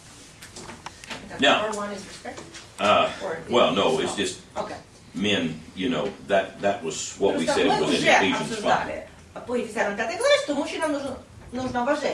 Now, Or one is respect? well, no, it's just Okay. men, you know, that was what we Просто said мы was in уже Ephesians 5. обсуждали по Ефесянам 5 главе, что мужчинам нужно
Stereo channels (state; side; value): identical; both; correlation 1.00